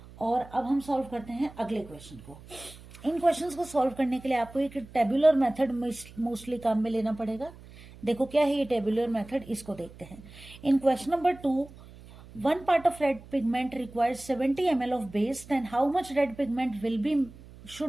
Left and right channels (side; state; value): right; noise; hum, 19 dB below the sound